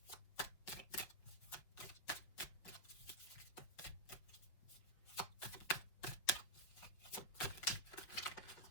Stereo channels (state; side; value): late; right; 6.0 ms